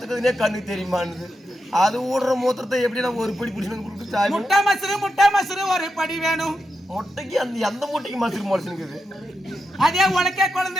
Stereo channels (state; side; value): normal; both; correlation 0.87